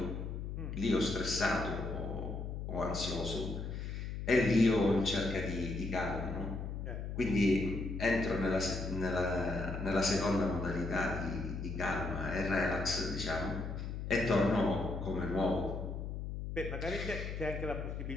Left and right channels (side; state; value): left; noise; hum, 5 dB below the sound